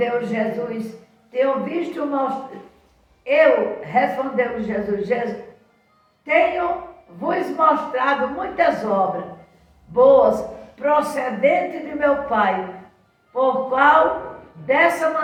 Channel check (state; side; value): identical; both; correlation 1.00